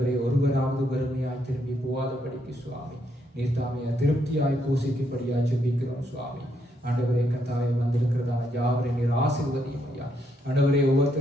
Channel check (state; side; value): normal; both; correlation 0.76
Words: ஒருவராவது வறுமையாய் திரும்பி போகாதபடிக்கு சுவாமி நீர் தாமே திருப்தியாய் போஷிக்கும்படியாய் ஜெபிக்கிறோம் சுவாமி. ஆண்டவரே கர்த்தாவே, வந்திருக்கிறதான யாவரை நீர் ஆசீர்வதியும் ஐயா. ஆண்டவரே,